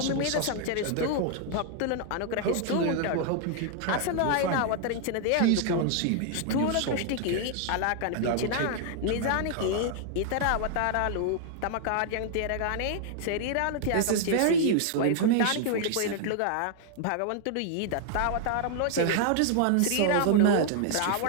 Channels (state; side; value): different; both; correlation 0.00